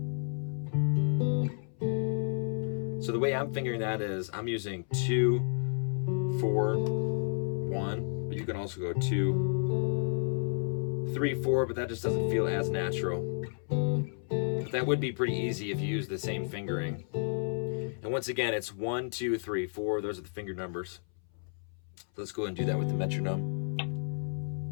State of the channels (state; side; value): silent; right; 57 dB below the other